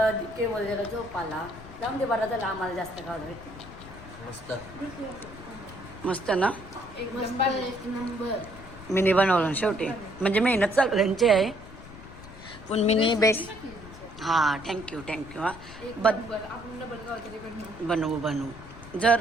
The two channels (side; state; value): left; noise; rumble, 16 dB below the sound